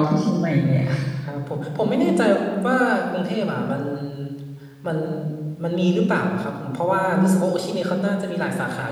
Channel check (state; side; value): identical; both; correlation 1.00